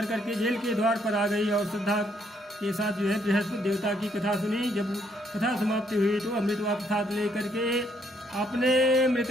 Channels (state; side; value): normal; both; correlation 0.70